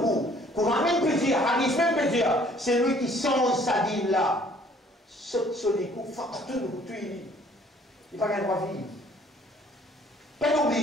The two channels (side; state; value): both; normal; correlation 0.58